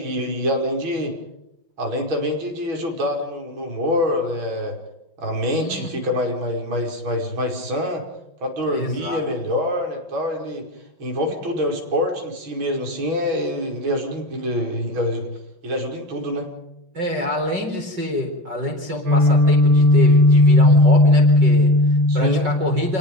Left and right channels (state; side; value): late; left; 5.5 ms